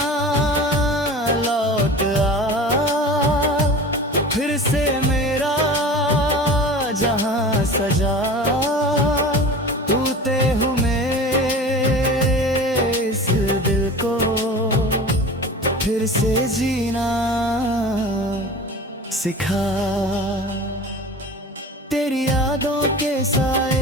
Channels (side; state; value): both; normal; correlation 0.36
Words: लौट आ, फिर से मेरा जहां सजा। तू ते हूँ इस दिल को फिर से जीना सिखा। तेरी यादों के